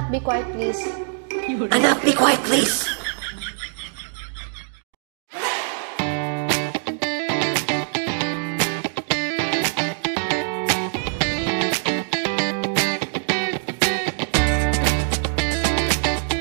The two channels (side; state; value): left; silent; digital silence